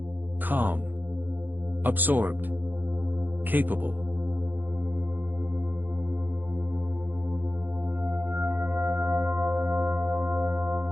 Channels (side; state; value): left; late; 0.088 ms